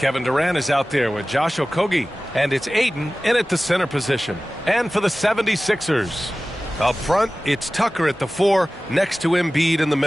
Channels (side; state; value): both; normal; correlation 0.97